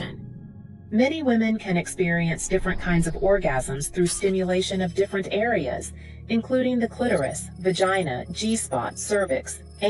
Many women can experience different kinds of orgasms through stimulation of different areas, including the clitoris, vagina, G-spot, cervix,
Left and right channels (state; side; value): identical; both; correlation 1.00